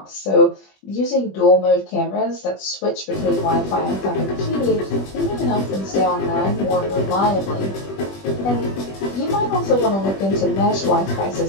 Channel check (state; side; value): late; right; 21 ms